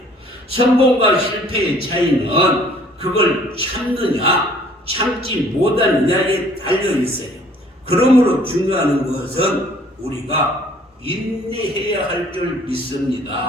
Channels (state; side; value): normal; both; correlation 0.56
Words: 성공과 실패의 차이는 그걸 참느냐 참지 못하느냐에 달려 있어요. 그러므로 중요한 것은 우리가 인내해야 할 줄